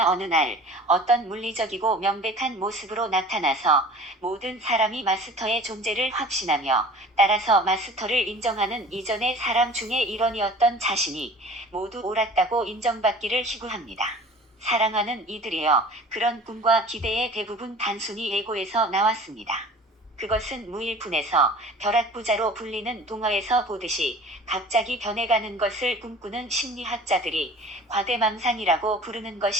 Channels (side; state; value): both; normal; correlation 0.44